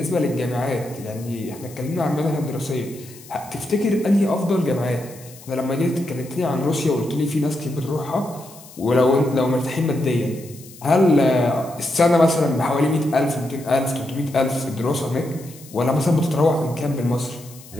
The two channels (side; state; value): left; noise; hiss, 20 dB below the sound